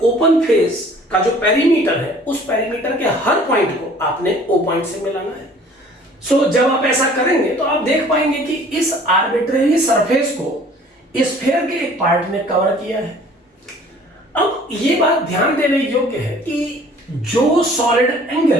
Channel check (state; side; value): normal; both; correlation 0.52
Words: ओपन फेस का जो पेरीमीटर है उस पेरीमीटर के हर पॉइंट को आपने O पॉइंट से मिलाना है। सो जब आप ऐसा करेंगे तो आप देख पाएंगे कि इस आर्बिट्रेरी सरफेस को स्फीयर के एक पार्ट ने कवर किया है। अब ये बात ध्यान देने योग्य है कि जो सॉलिड